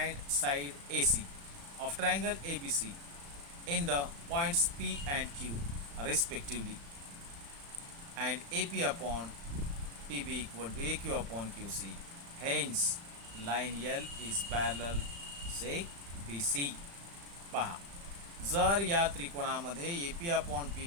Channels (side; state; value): left; late; 35 ms